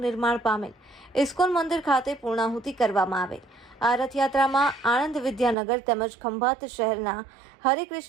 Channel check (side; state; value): left; drops out; at 5.6 s